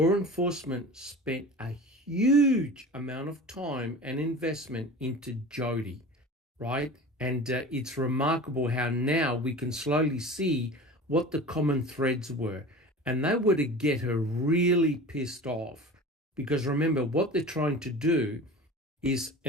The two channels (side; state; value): both; normal; correlation 0.36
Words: enforcement spent a huge amount of time and investment into Jodi, right? And it's remarkable how now we can slowly see what the common threads were. And they were to get her really pissed off. Because remember, what they're trying to do is,